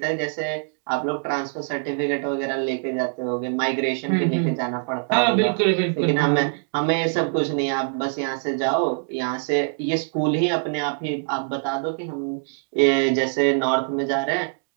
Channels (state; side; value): silent; left; digital silence